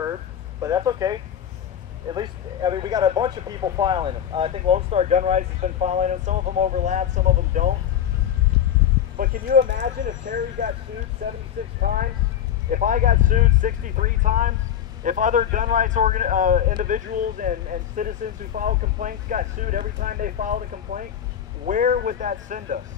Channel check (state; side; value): quieter; right; 9.7 dB